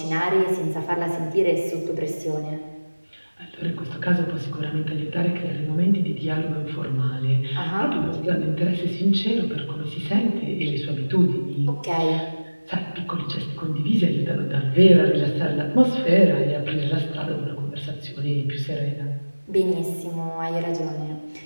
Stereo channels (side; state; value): both; inverted; correlation -1.00